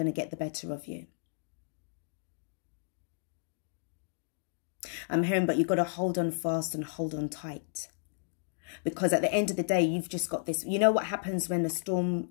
to get the better of you. I'm hearing, but you've got to hold on fast and hold on tight. Because at the end of the day, you've just got this. You know what happens when the storm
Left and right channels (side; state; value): right; silent; digital silence